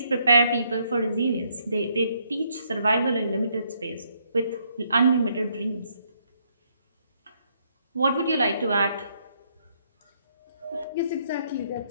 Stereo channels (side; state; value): both; inverted; correlation -0.72